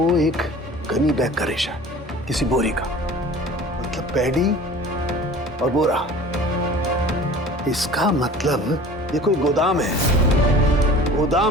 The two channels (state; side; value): normal; both; correlation 0.43